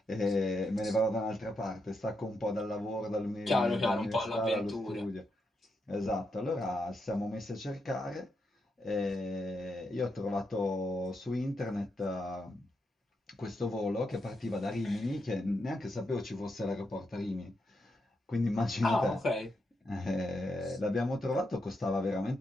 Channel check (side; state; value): both; normal; correlation 0.83